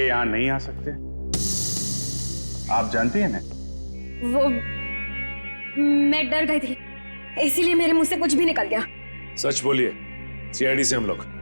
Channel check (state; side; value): inverted; both; correlation -1.00